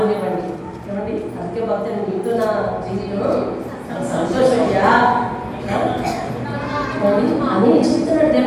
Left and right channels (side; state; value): both; identical; correlation 1.00